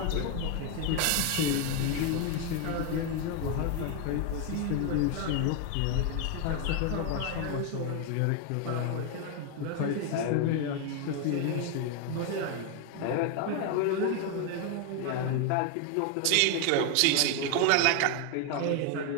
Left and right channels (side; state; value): both; different; correlation 0.01